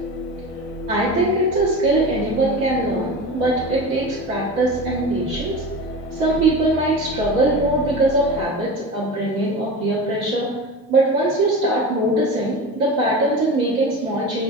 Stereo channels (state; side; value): normal; both; correlation 0.29